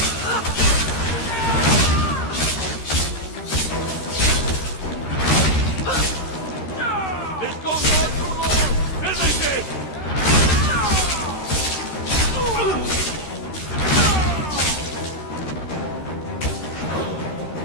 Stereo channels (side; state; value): right; late; 13 ms